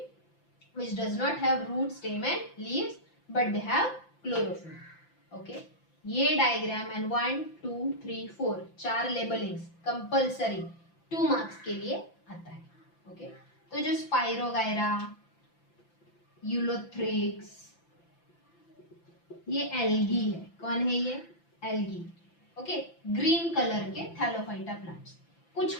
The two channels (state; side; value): late; right; 5.9 ms